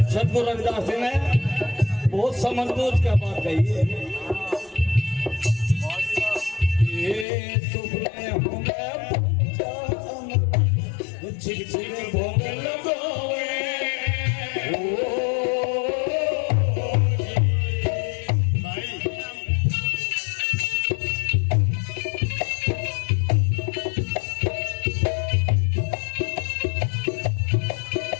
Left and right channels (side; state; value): right; drops out; at 7.2 s